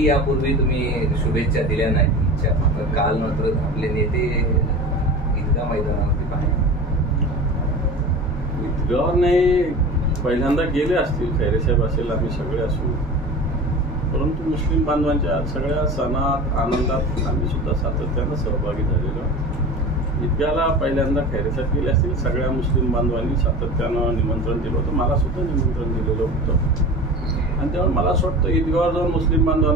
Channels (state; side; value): normal; both; correlation 0.33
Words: यापूर्वी तुम्ही शुभेच्छा दिल्या नाहीत, काल मात्र आपले नेते ईदगाह मैदानावरती पाहिजे. ईदगाह नाही, पहिल्यांदा गेले असतील, खैरेसाहेब असेल, आम्ही सगळे असू, परंतु मुस्लिम बांधवांच्या सगळ्या सणात आनंदात आम्ही सुद्धा सातत्यानं सहभागी झालेलो. ईदगाहला पहिल्यांदा खैरेसाहेब गेले असतील, सगळ्या मुस्लिम बांधवांनी सातत्यानं निमंत्रण दिलं होतं, मला सुद्धा निमंत्रण दिलेलं होतं. आणि त्यामुळे मला असं वाटतं ईदगाहवर जाऊन मुस्लिम